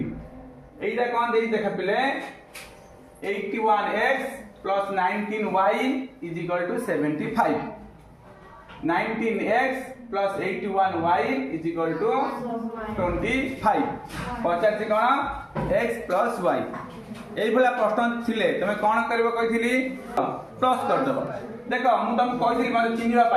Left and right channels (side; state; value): both; identical; correlation 1.00